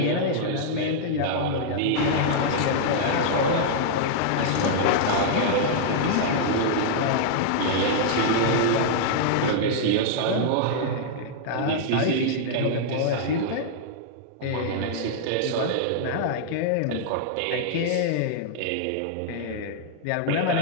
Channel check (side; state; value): both; different; correlation -0.01